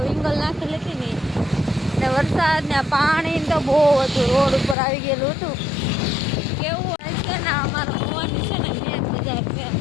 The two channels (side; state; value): right; drops out; at 4.8 s